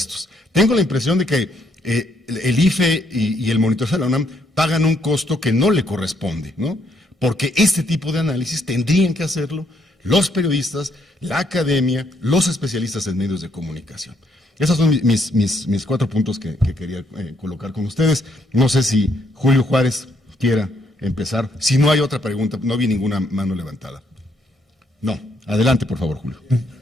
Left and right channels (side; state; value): both; normal; correlation 0.72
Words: Tengo la impresión de que el IFE y el monitoreo de la UNAM pagan un costo que no le corresponde, ¿no? Porque este tipo de análisis tendrían que hacerlo los periodistas, la academia, los especialistas en medios de comunicación. Esos son mis 4 puntos que quería colocar con ustedes. No sé si Julio Juárez quiera empezar. Si no hay otra pregunta, no vi ninguna mano levantada. No. Adelante, por favor, Julio.